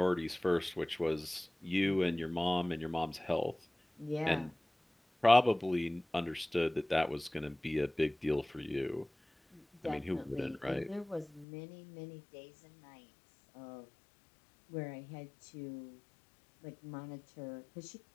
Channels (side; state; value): right; drops out; at 11.5 s